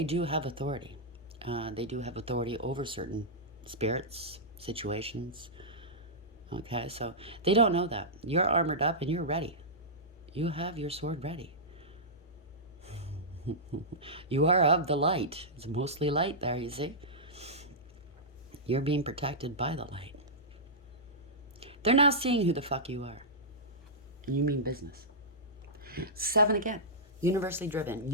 do have authority. They do have authority over certain spirits, situations, okay? So they don't know that. You're armored up and you're ready. You have your sword ready. You are of the light. It's mostly light there, you see? You're being protected by the light. They're now seeing who the fuck you are. You mean business. 7 again. Universally driven.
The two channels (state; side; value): normal; both; correlation -0.13